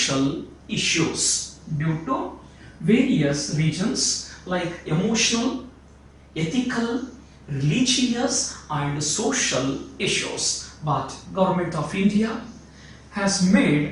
issues due to various reasons like emotional, ethical, religious and social issues. But Government of India has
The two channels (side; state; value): both; identical; correlation 1.00